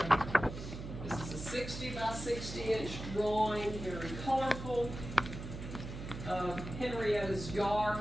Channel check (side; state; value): right; noise; hum, 8 dB below the sound